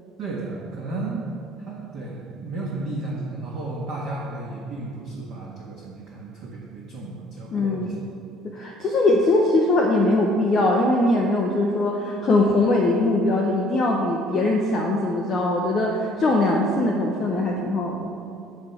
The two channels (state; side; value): normal; both; correlation 0.60